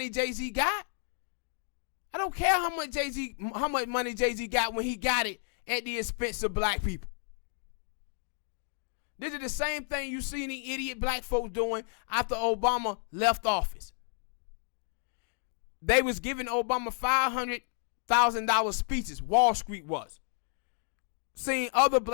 Jay-Z got. I don't care how much money Jay-Z got when he got it at the expense of black people. This is the same thing you see the idiot black folks doing after Obama left office. They was giving Obama $500,000 speeches. Wall Street was. Seeing other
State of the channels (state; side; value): silent; right; 57 dB below the other